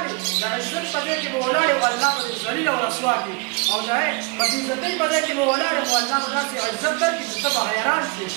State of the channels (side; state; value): left; quieter; 30.1 dB